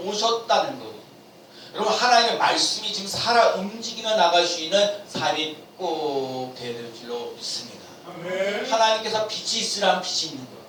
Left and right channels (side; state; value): both; identical; correlation 1.00